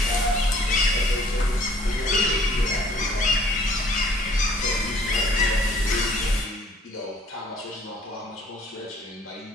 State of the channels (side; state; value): both; normal; correlation 0.57